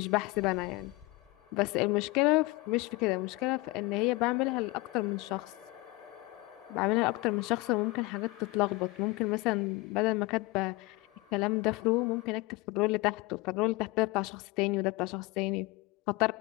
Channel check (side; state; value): right; quieter; 23.0 dB